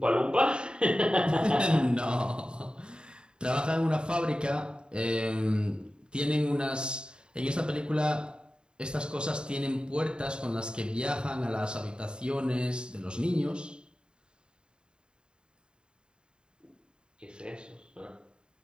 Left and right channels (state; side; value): late; left; 0.050 ms